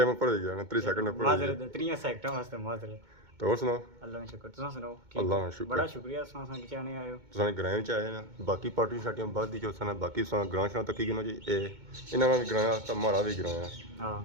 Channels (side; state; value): left; late; 2.2 ms